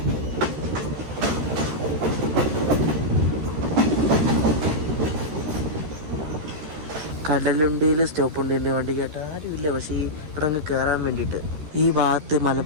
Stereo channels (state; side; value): late; left; 13 ms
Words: കടലുണ്ടിയിൽ സ്റ്റോപ്പുണ്ട് എൻ്റെ വണ്ടി കേട്ട് ആരുമില്ല. പക്ഷേ ഇവിടെ അങ്ങ് കയറാൻ വേണ്ടിയിട്ട് ഈ ഭാഗത്ത്